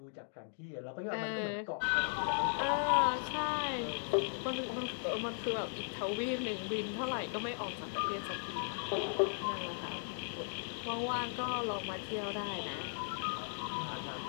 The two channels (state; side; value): silent; right; digital silence